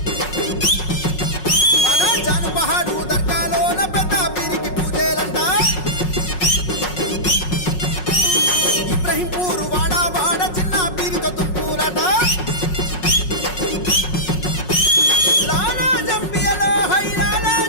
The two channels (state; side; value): late; right; 5.5 ms